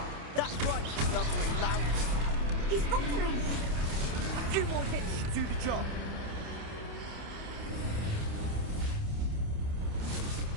That's right, lovely lad. He's faltering! A few more hits should do the job.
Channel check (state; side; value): late; left; 28 ms